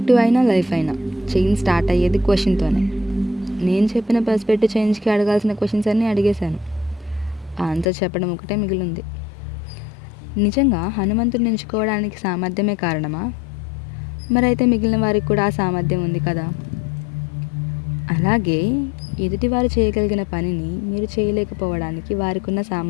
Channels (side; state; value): right; drops out; at 7.9 s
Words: అయినా లైఫ్ అయినా చేంజ్ స్టార్ట్ అయ్యేది క్వశ్చన్తోనే. నేను చెప్పిన పర్స్పెక్టివ్ చేంజ్కి అడగాల్సిన క్వశ్చన్స్ అన్నీ అడిగేశాను. ఆన్సర్ చెప్పడం ఒకటే మిగిలింది. నిజంగా హనుమంతుడిని ఎంచుకోవడానికి సామర్థ్యమే కారణమా? మరైతే మిగిలిన వారికి కూడా ఆ సామర్థ్యం ఉంది కదా. అలాగే ఎదుటివారు చేయగలిగిన పనిని మీరు చేయలేకపోవడానికి వారికి ఉన్న